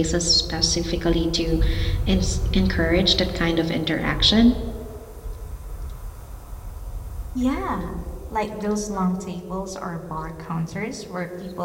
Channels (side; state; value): both; identical; correlation 1.00